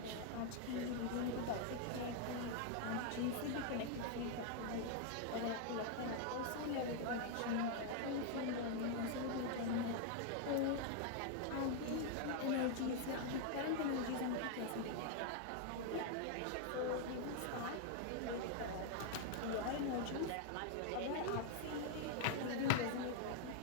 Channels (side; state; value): both; different; correlation 0.00